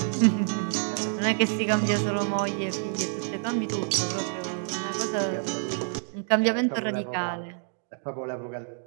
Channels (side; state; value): left; silent; digital silence